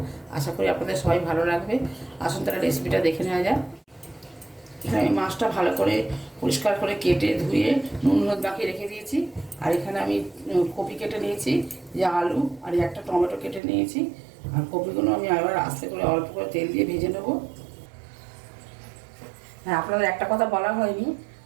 আশা করি আপনাদের সবাই ভালো লাগবে। আসুন তাহলে রেসিপিটা দেখে নেওয়া যাক। এখানে আমি মাছটা ভালো করে পরিষ্কার করে কেটে ধুয়ে নুন হলুদ মাখিয়ে রেখে দিয়েছি। আর এখানে আমি কপি কেটে নিয়েছি, যে আলু আর একটা টমেটো কেটে নিয়েছি। আর কপিগুলো আমি আবার আস্তে করে অল্প করে তেল দিয়ে ভেজে নেব। হ্যাঁ, আপনাদের একটা কথা বলা হয়নি,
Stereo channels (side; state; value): left; drops out; at 13.6 s